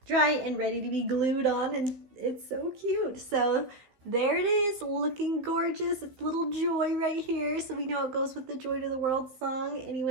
dry and ready to be glued on. And it's so cute. So there it is, looking gorgeous. It's little Joy right here. So we know it goes with the Joy to the World song.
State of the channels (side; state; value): left; late; 15 ms